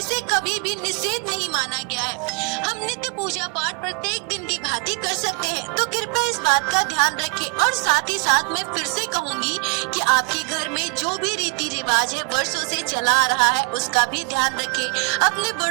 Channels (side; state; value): left; quieter; 35.2 dB